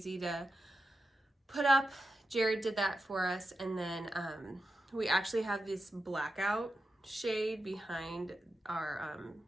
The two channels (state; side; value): normal; both; correlation 0.89